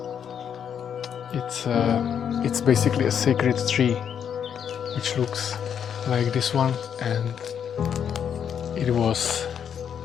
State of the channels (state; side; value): quieter; right; 8.2 dB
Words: It's basically a sacred tree which looks like this one, and it was